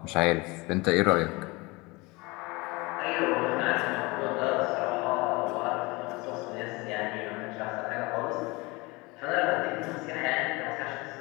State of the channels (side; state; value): right; quieter; 24.4 dB